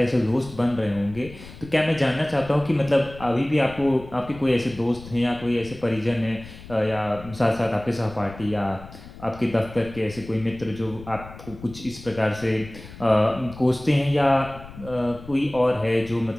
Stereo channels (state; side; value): noise; left; rumble, 16 dB below the sound